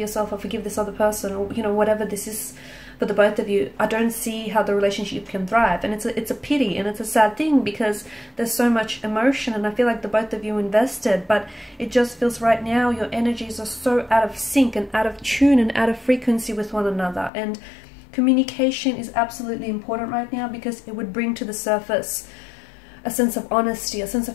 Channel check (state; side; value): drops out; right; at 17.3 s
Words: or forgive this other person, or, you know, whatever this is for the both of you, I don't see how the relationship can thrive. And it's a pity, and it's a sad thing, because there's so much emotion, and I feel like the both of you invested, but it just feels right now your energies are so out of sync and out of tune and out of frequency with one another. And communication is absolutely important right now, because it would bring to the surface a sense of honesty, a sense